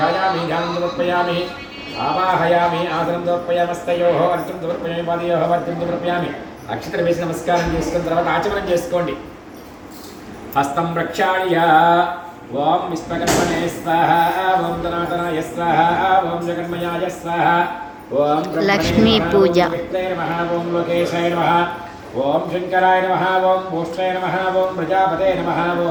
ध्यानं समर्पयामि आवाहयामि आसनं समर्पयामस्तयोः अर्घ्यं समर्पयामि पादयोः अर्घ्यं समर्पयामि अक्षत्र वेసి नमस्कारं చేసుకున్న తర్వాత ఆచమనం చేసుకోండి हस्तं प्रक्षाल्य ओं विश्वकर्मणे स्वाहा ओं धनातनाय स्वाहा ओं जगन्मयाय स्वाहा ओं लक्ष्मी पूजा नमः ओं लोकेशाय नमः ओं शंकराय नमः ओं भूष्ठाय नमः ओं प्रजापते नमः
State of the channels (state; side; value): identical; both; correlation 1.00